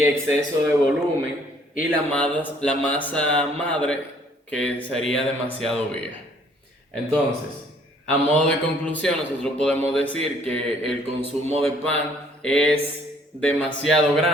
exceso de volumen y la masa madre que sería demasiado vieja. Entonces, a modo de conclusión, nosotros podemos decir que el consumo de pan es demasiado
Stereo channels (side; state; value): both; normal; correlation 0.61